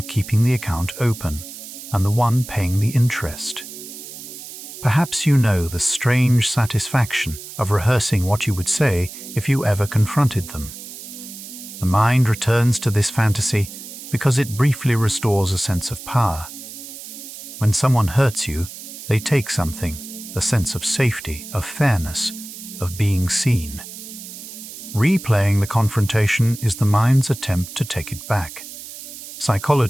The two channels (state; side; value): noise; right; hiss, 13 dB below the sound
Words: keeping the account open and the one paying the interest. Perhaps you know the strange satisfaction of rehearsing what you would say if you ever confronted them. The mind returns to this fantasy because it briefly restores a sense of power. When someone hurts you, they take something, a sense of safety, of fairness, of being seen. Replaying the confrontation is the mind's attempt to take it back.